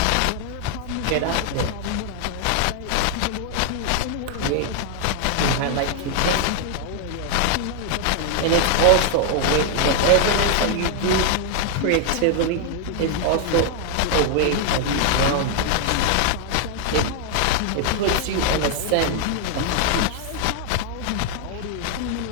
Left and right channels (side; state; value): both; different; correlation 0.00